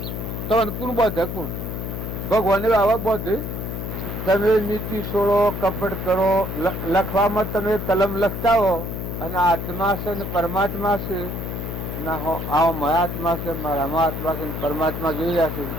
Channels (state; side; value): noise; left; hum, 5 dB below the sound